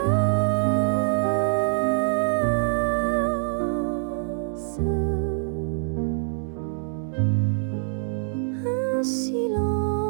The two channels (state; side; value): silent; left; 57 dB below the other